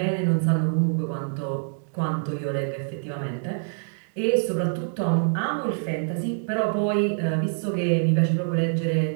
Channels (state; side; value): silent; left; digital silence